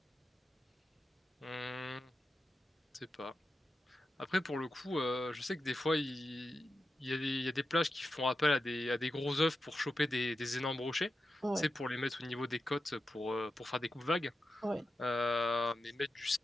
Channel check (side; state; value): both; normal; correlation 0.90